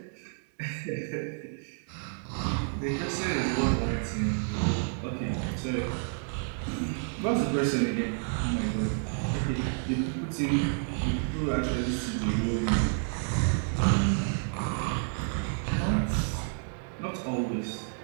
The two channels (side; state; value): left; silent; 58 dB below the other